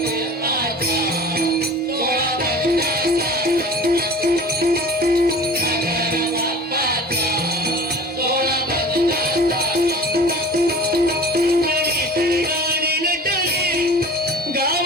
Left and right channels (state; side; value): normal; both; correlation 0.41